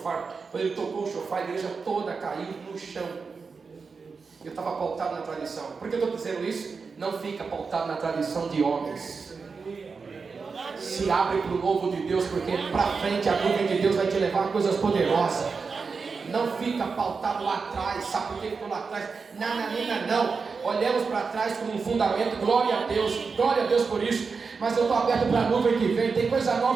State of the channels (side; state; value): left; quieter; 4.9 dB